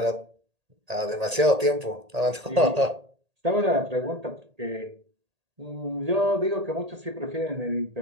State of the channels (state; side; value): late; left; 1.8 ms